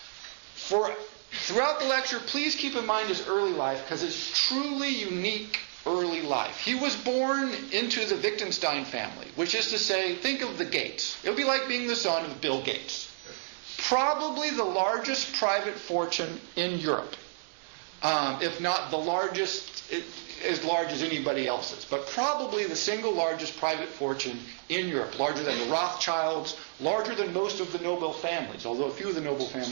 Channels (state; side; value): silent; left; digital silence